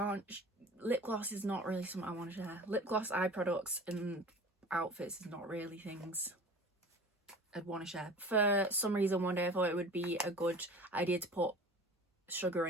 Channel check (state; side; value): normal; both; correlation 0.41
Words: lip gloss is not really something I want to share. Lip gloss, eye products and outfits is not really things I'd want to share. For some reason one day I thought it would be a good idea to put sugar